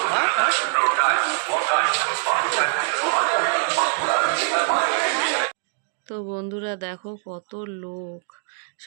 তো বন্ধুরা দেখো কত লোক,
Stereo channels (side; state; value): left; silent; digital silence